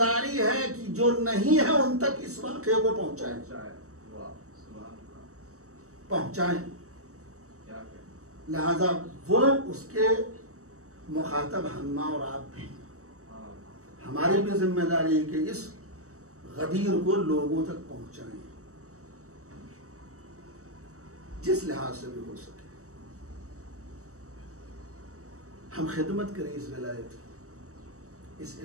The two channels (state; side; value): late; left; 0.65 ms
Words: है कि जो नहीं है उन तक इस वाक़े को पहुंचाएं। लिहाजा वो उसके मुखातब हम और आप भी, हमारी भी जिम्मेदारी है कि इस गदीर को लोगों तक पहुंचाएं, जिस लिहाज से भी हो सके। हम खिदमत करें इस विलायत की, इस